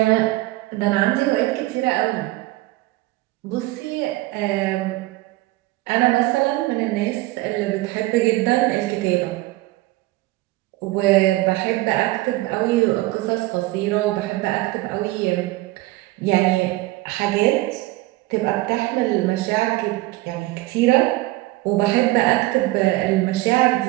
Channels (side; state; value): left; quieter; 19.1 dB